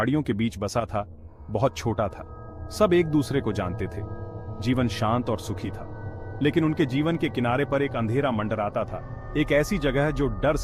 के बीच बसा था, बहुत छोटा था। सब एक दूसरे को जानते थे। जीवन शांत और सुखी था। लेकिन उनके जीवन के किनारे पर एक अंधेरा मंडराता था, एक ऐसी जगह जो डर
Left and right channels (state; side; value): identical; both; correlation 1.00